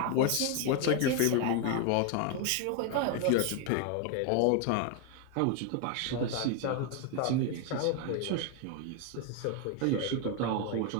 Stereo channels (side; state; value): both; different; correlation 0.01